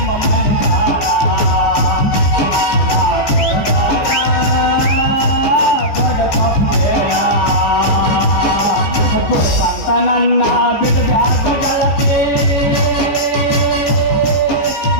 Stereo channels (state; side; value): late; right; 14 ms